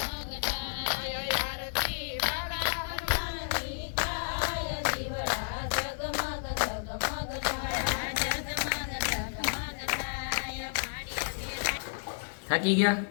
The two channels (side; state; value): right; silent; 57 dB below the other